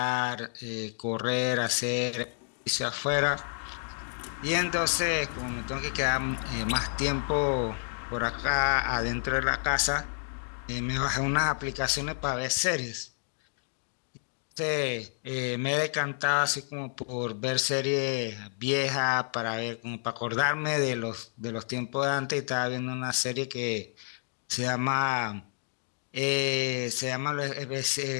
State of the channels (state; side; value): silent; right; digital silence